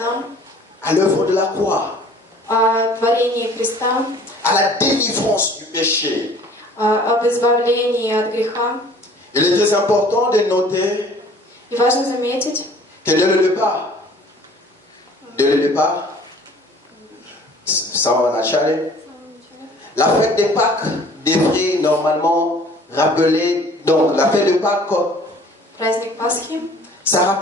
À l'œuvre de la croix, о творении Христа, à la délivrance du péché. об избавлении от греха. Il est très important de noter И важно заметить, que dès le départ, ça va начале, la fête des Pâques devrait normalement rappeler, donc la fête de Pâques, праздник Пасхи, ça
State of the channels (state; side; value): normal; both; correlation 0.51